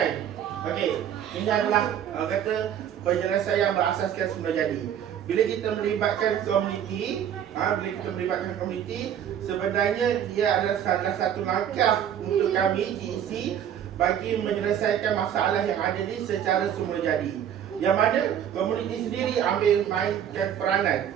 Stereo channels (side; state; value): left; quieter; 9.6 dB